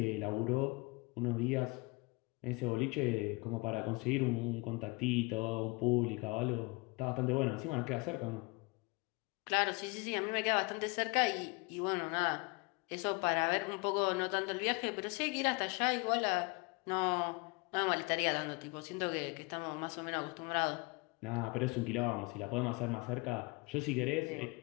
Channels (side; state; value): right; quieter; 27.4 dB